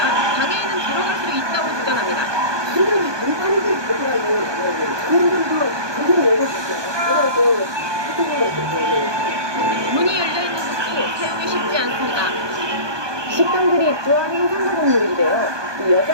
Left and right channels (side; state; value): left; late; 1.2 ms